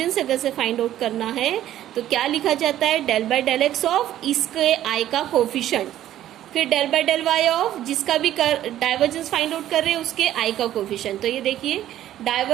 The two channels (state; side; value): quieter; left; 12.5 dB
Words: अगर से फाइंड आउट करना है तो क्या लिखा जाता है, del by del x of इसके i का कोफिशिएंट, फिर del by del Y of जिसका भी डाइवर्जेंस फाइंड आउट कर रहे हैं उसके आई का कोफिशिएंट। तो ये देखिए